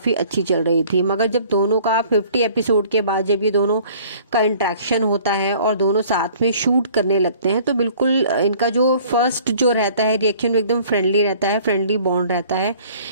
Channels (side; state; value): both; inverted; correlation -0.53